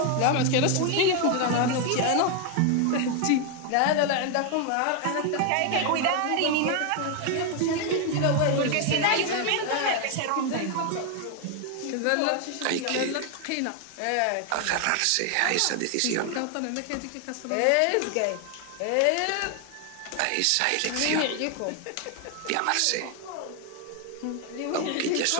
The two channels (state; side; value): different; both; correlation 0.00